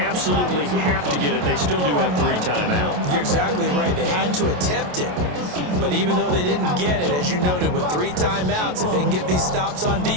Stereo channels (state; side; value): late; left; 28 ms